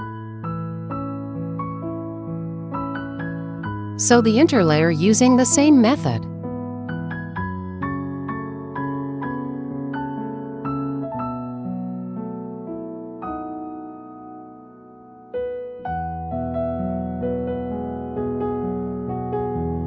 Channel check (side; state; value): both; identical; correlation 1.00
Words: Sew the interlayer using the same method.